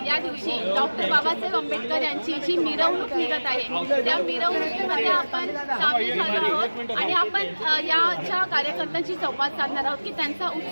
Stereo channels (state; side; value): inverted; both; correlation -1.00